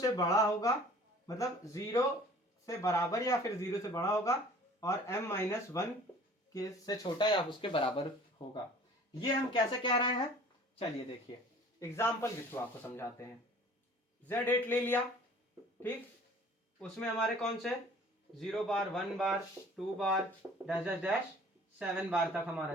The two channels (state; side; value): normal; both; correlation 0.49